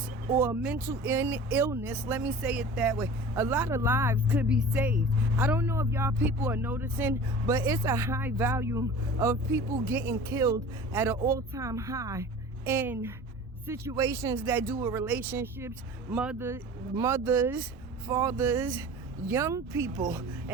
or mental illness, let me say it that way, a lot of lives could be saved. I don't know if y'all people are noticing, but it's a high volume of people getting killed at an all-time high in situations that do with relationships, mothers, fathers, young people.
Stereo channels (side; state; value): both; normal; correlation 0.40